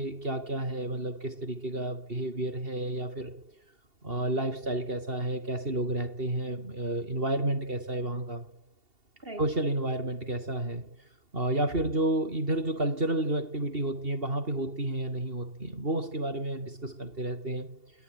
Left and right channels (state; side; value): late; left; 2.7 ms